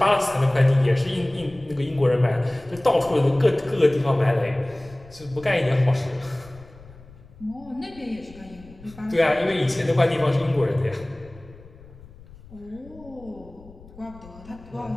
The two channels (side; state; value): left; noise; rumble, 21 dB below the sound